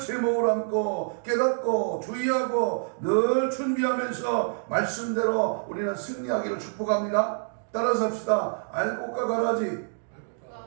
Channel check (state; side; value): silent; left; digital silence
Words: 안고 깨닫고 주의하고 늘 준비하면서 말씀대로 우리는 승리하기를 축복합니다. 따라서 합시다. 알곡과 가라지.